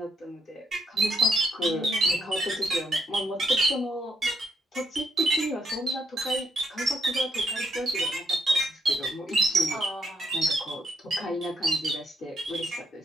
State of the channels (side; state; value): both; normal; correlation 0.75